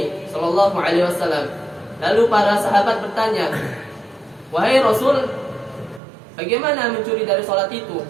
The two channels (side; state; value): left; drops out; at 6.0 s